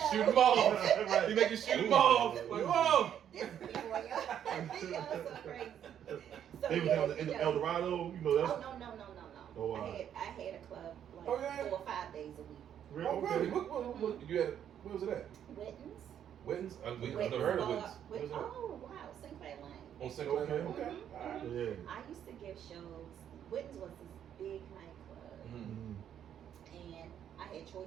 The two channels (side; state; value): left; quieter; 9.6 dB